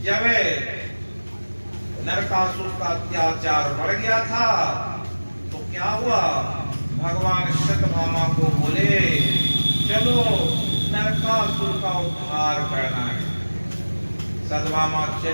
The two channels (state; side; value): inverted; both; correlation -1.00